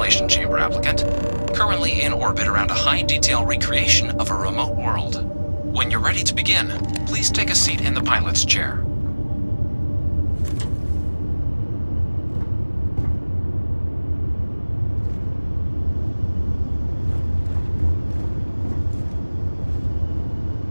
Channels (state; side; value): inverted; both; correlation -1.00